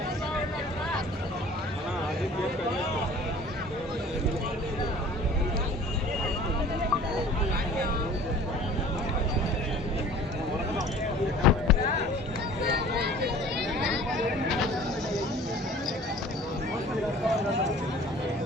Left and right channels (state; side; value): normal; both; correlation 0.47